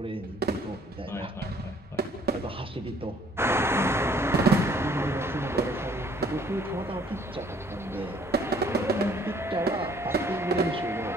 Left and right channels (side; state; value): both; normal; correlation 0.60